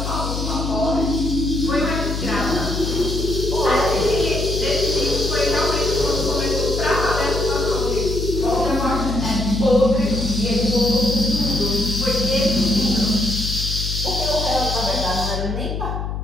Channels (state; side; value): noise; left; hum, 4 dB below the sound